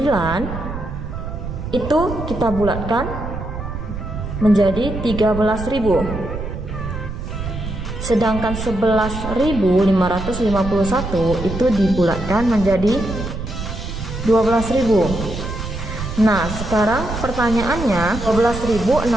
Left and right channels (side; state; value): right; noise; rumble, 7 dB below the sound